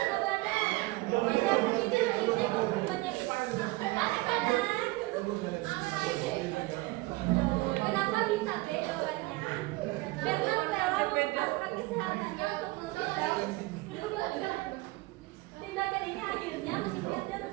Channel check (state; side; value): quieter; left; 21.8 dB